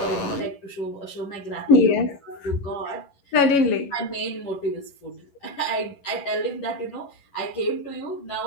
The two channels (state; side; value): late; right; 11 ms